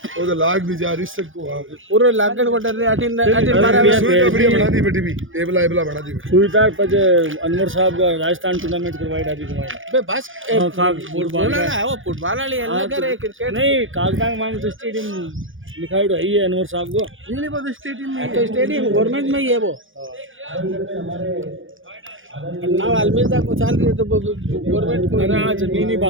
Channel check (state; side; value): late; left; 0.58 ms